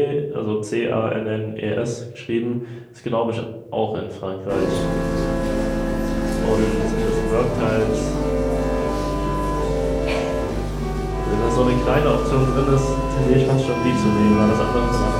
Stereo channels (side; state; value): both; identical; correlation 1.00